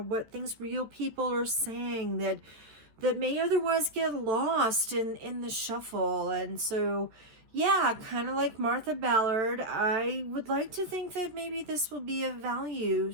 what things real people are saying that may otherwise get lost in the shuffle. And so, yeah, kind of like Martha Ballard, I would like to think that maybe this will be of value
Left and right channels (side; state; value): left; late; 14 ms